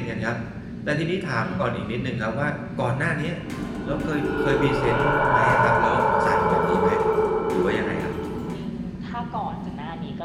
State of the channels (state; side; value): identical; both; correlation 1.00